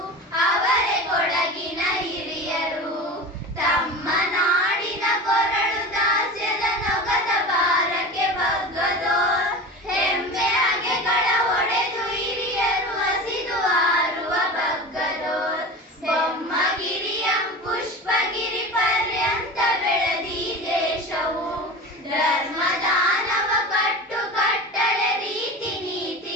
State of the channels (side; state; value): both; normal; correlation 0.32